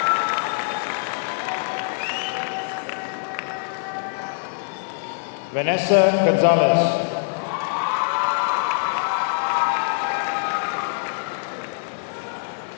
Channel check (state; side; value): silent; right; 63 dB below the other